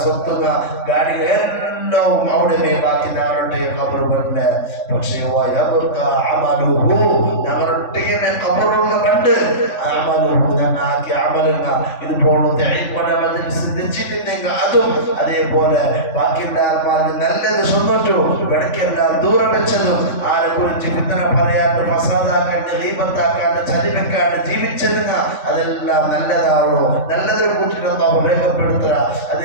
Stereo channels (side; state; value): right; late; 3.5 ms